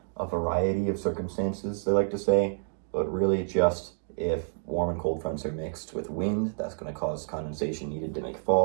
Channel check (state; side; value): silent; left; 59 dB below the other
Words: a variety of circumstances, they like to say, but really just if warm and cold fronts are mixed with wind, that's going to cause condensation needed to make